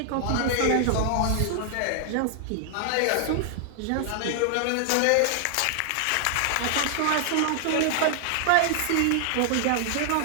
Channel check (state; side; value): different; both; correlation 0.00